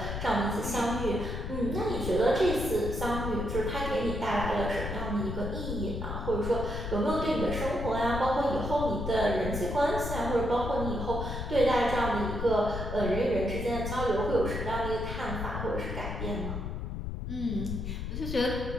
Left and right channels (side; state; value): left; noise; rumble, 5 dB below the sound